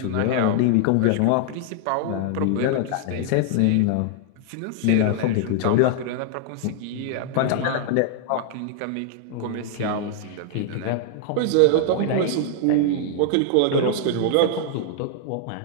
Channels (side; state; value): both; different; correlation -0.01